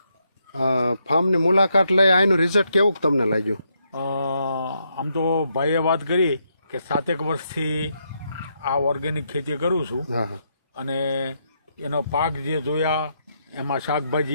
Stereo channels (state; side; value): inverted; both; correlation -0.78